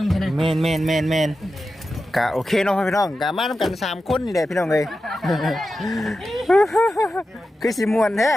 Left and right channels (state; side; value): normal; both; correlation 0.91